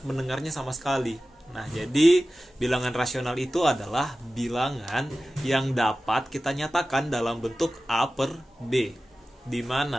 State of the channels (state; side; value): normal; both; correlation 0.95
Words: mendengarnya sama sekali. Nah, jadi bilangan rasional itu adalah bilangan yang dapat kita nyatakan dalam bentuk A per B, di